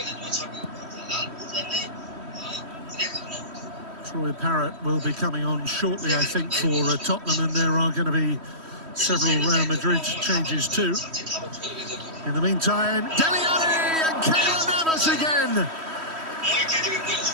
Troy Parrott will be coming on shortly, I think, for Tottenham, and there are going to be several Real Madrid changes too. In the meantime, Dele Alli and Keylor Navas again.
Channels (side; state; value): left; late; 3.1 ms